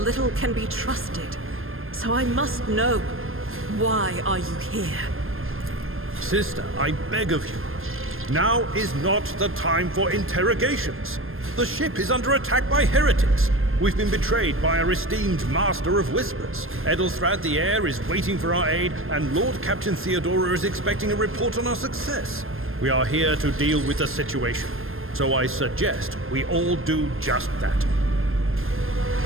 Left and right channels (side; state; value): left; late; 0.60 ms